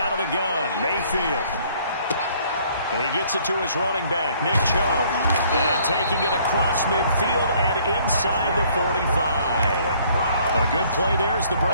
of the gun, Mayfield. And he gets it to his running back, Nick Chubb. And taking it across midfield and inside the 45. A good play there as the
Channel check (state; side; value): inverted; both; correlation -0.61